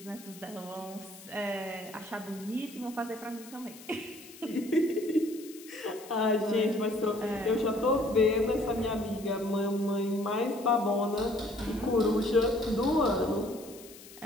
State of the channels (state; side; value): noise; left; hiss, 19 dB below the sound